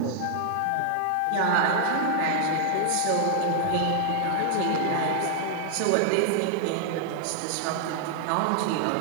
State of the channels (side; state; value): both; different; correlation 0.00